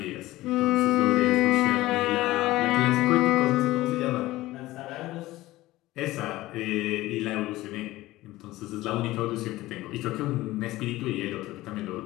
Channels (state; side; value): quieter; right; 17.5 dB